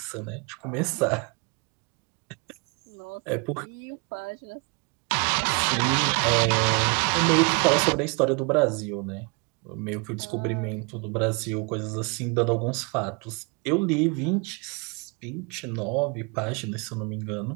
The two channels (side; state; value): left; quieter; 32.8 dB